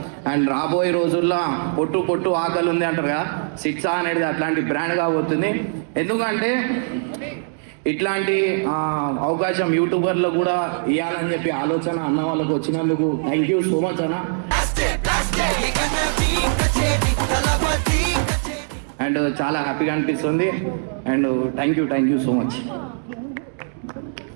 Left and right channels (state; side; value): silent; left; digital silence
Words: అండ్ రాబోయే రోజుల్లో పొట్టు పొట్టు ఆకలి ఉంది అంటారు కదా, శిక్ష అనేది అట్లాంటి బ్రాండ్ కాబోతుంది. ఎందుకంటే ఇట్లాంటి అవకాశం యూట్యూబర్లో కూడా ఇవ్వాలని చెప్పి ఆలోచన అన్న వాళ్ళకు వచ్చినందుకు థ్యాంక్ యూ సో మచ్ అన్న. అండ్ చాలా హ్యాపీగా అనిపిస్తుంది. And thank you so much.